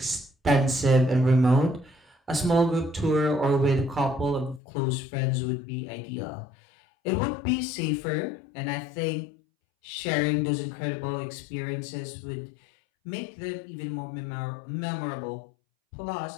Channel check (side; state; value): right; drops out; at 4.6 s